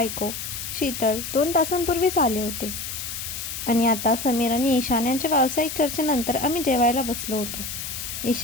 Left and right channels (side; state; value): left; noise; hiss, 6 dB below the sound